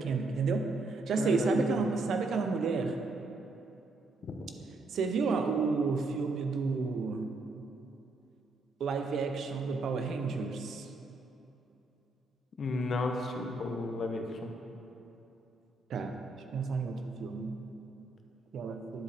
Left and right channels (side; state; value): left; quieter; 3.1 dB